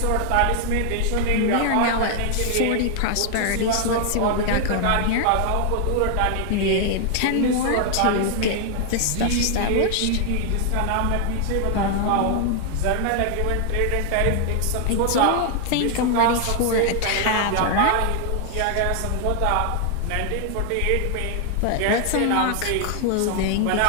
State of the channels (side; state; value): both; different; correlation 0.00